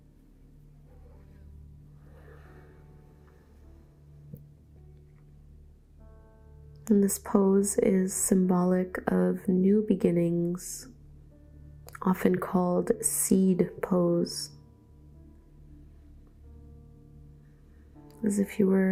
And this pose is symbolic of new beginnings, often called seed pose. As if you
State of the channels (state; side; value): identical; both; correlation 1.00